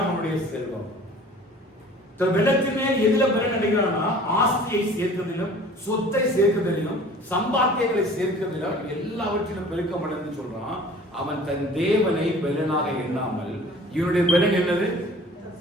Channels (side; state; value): both; normal; correlation 0.47